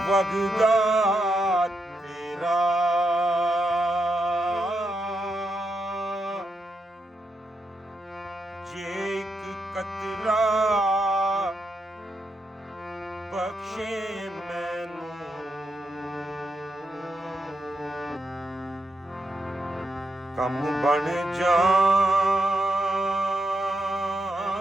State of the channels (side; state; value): both; normal; correlation 0.83